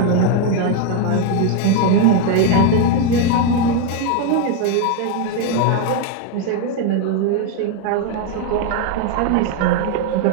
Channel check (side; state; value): both; different; correlation 0.01